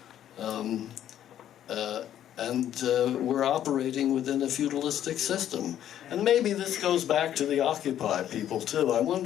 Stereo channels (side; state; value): right; quieter; 11.0 dB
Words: We're operating within a feudalistic system. And maybe this goes back to the Occupy people too. I